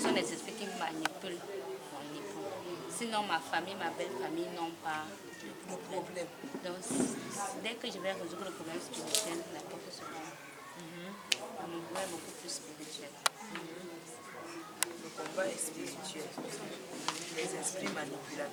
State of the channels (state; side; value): identical; both; correlation 1.00